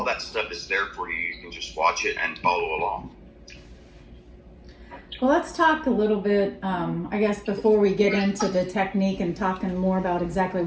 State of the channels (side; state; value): both; identical; correlation 1.00